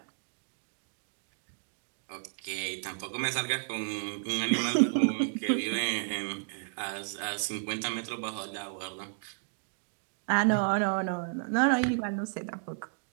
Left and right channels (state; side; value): silent; left; digital silence